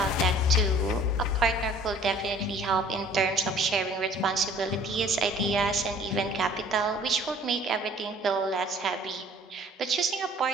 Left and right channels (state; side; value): normal; both; correlation 0.53